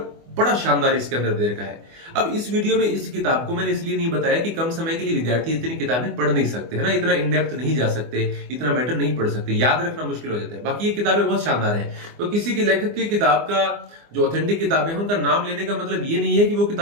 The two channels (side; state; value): left; late; 24 ms